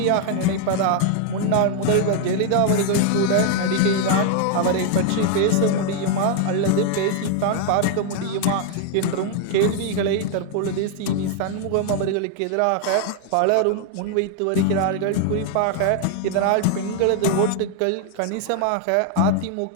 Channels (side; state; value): both; different; correlation 0.00